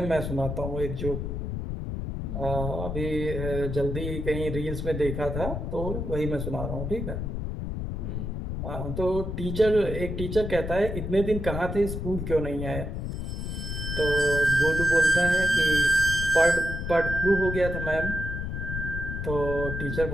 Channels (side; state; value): left; noise; rumble, 4 dB below the sound